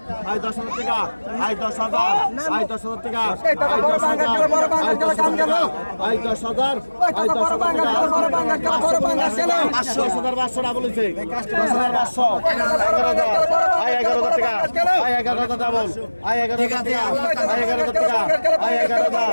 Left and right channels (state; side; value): inverted; both; correlation -1.00